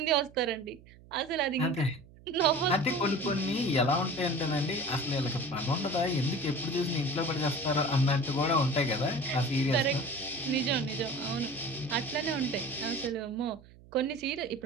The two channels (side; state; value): right; noise; hum, 23 dB below the sound